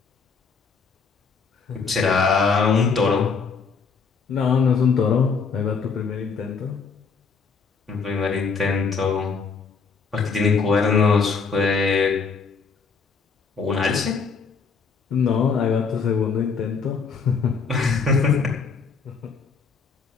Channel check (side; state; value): right; quieter; 5.3 dB